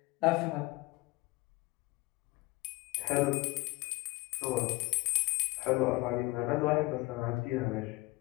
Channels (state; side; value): quieter; right; 22.5 dB